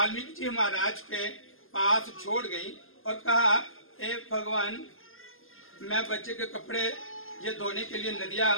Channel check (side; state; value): right; late; 0.60 ms